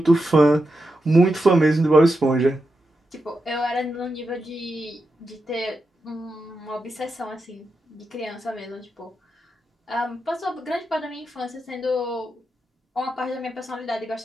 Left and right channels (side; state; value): both; normal; correlation 0.87